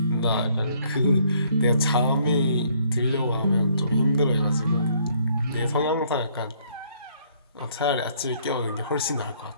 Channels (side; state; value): both; inverted; correlation -0.65